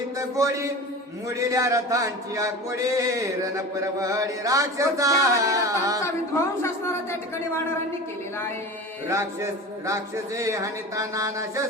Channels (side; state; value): both; normal; correlation 0.33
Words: गोडी मुडील्या रथांची आकोडे रण परवडी राक्षसा विध्वंस असणारा त्या ठिकाणी वानरांनी केलेला आहे. राक्षसे हनिता नाना